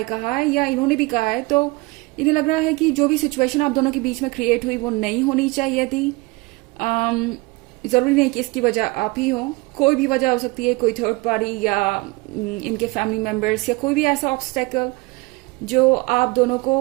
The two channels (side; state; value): left; quieter; 24.5 dB